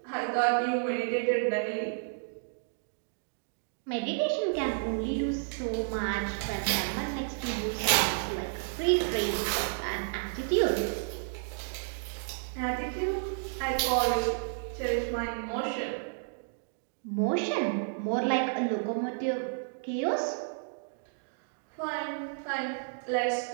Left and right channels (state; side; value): silent; left; digital silence